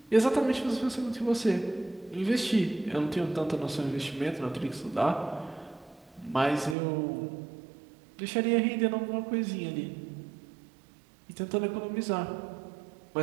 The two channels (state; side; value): drops out; left; at 6.8 s